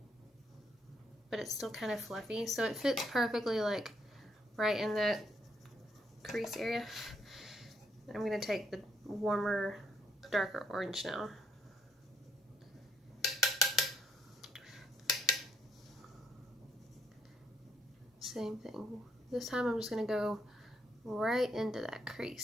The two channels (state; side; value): normal; both; correlation 0.72